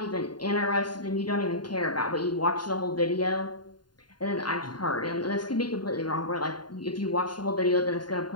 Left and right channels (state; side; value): late; right; 0.71 ms